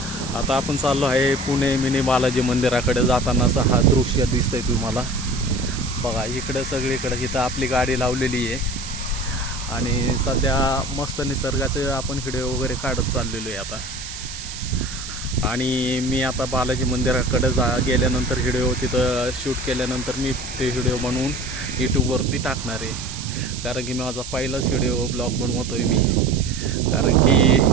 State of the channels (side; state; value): right; noise; hiss, 10 dB below the sound